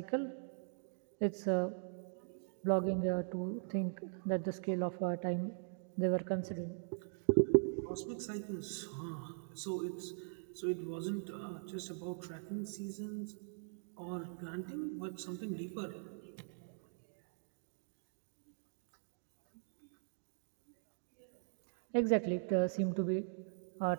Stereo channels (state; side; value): silent; left; digital silence